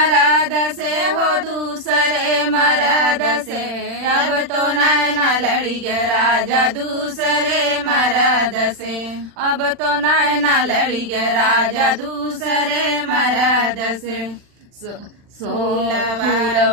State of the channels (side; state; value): left; late; 40 ms